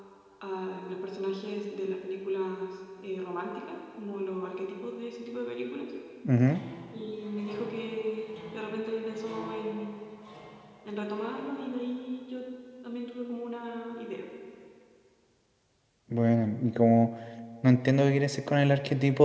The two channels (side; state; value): both; identical; correlation 1.00